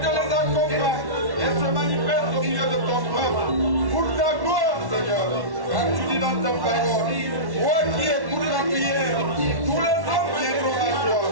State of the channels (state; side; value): late; left; 1.1 ms